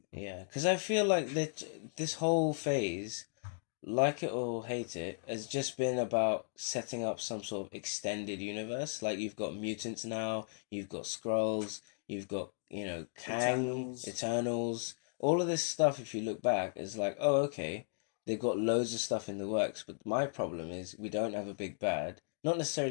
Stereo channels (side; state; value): right; silent; digital silence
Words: Yeah, because I feel like that this whole phase like it or hate it, has just been about setting up some sort of extended universe. Like you've got mutants now, you've got Skrulls, you've got, Kang, Eternals. Eternals. All of this stuff, if you look back, is like, oh, okay, they've got loads of stuff in the works. But my problem is we don't have a big bad. Not